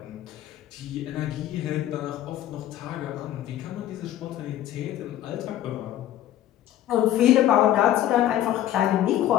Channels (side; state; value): right; quieter; 12.5 dB